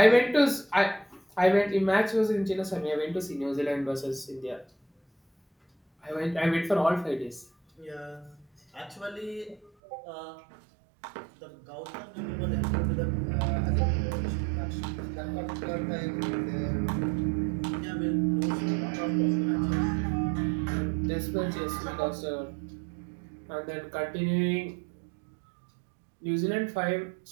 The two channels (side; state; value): left; drops out; at 9.7 s